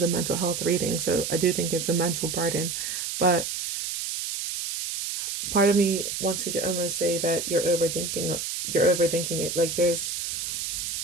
a mental health reading, so I do think it's a mental burden, but part of me wants to almost say that you're overthinking it. Like, there's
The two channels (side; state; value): right; noise; hiss, 4 dB below the sound